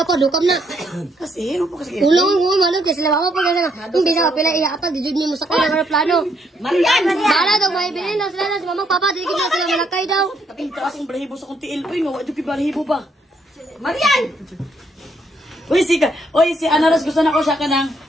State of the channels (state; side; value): normal; both; correlation 0.72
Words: pa, dukam na. Kasi, ano po kasi? Tulungan mo, manong, kasi mama pa kasi na. Hindi sa kapila, iyaapag, dijud mo sa kanya ng plano. Marian! Bala daw, may bilhin na sila na, si mamang papa, di na sila malakay daw. Kaping taas ang balahibo sa kong tiil. Uy, nga, ito balahibo ba? Marian! Uy, si Ana Rose, gusto na ko siya ka ng,